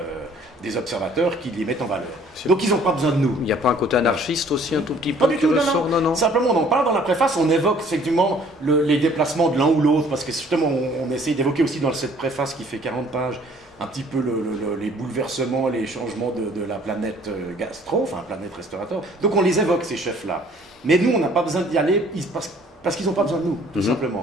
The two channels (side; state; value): both; normal; correlation 0.56